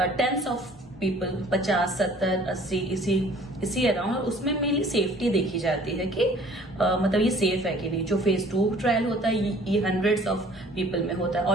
टेंस ऑफ पीपल, 50, 70, 80 इसी अराउंड, और उसमें मेनली सेफ्टी देखी जाती है कि मतलब ये सेफ है कि नहीं। जो फेज 2 ट्रायल होता है ये हंड्रेड्स ऑफ पीपल में होता है,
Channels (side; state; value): both; normal; correlation 0.53